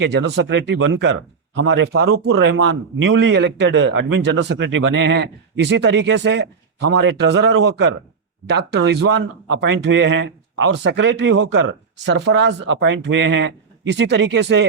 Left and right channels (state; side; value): quieter; left; 5.4 dB